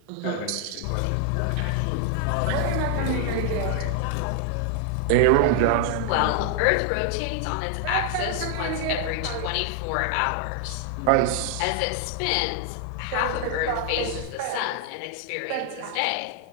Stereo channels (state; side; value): different; both; correlation 0.00